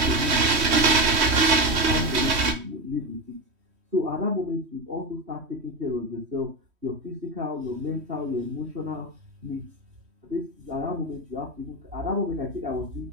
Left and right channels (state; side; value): late; left; 3.1 ms